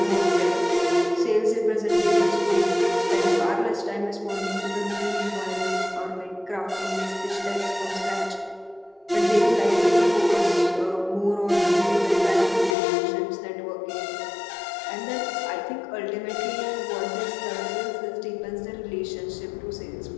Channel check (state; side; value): drops out; right; at 12.8 s